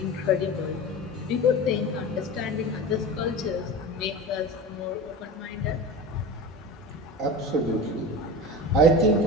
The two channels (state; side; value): normal; both; correlation 0.30